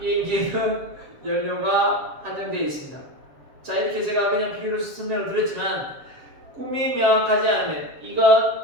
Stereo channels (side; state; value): left; late; 7.3 ms